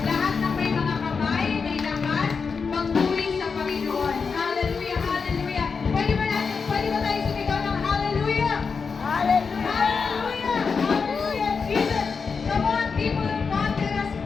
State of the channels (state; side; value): quieter; right; 5.3 dB